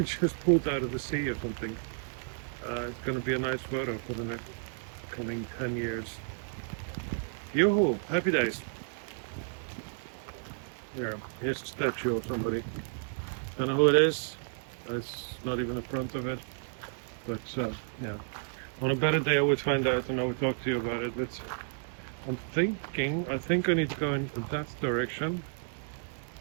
just pulled out of the sea or something. It's gonna be a nice photo for the next coming 10 years. Yoo-hoo! Happy days. Here's a statue of somebody. Don't know who it is. It's not even the front of it. But yeah. On a better day I would find out and I would talk to you about it, but I think I need to go in that direction.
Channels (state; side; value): silent; left; digital silence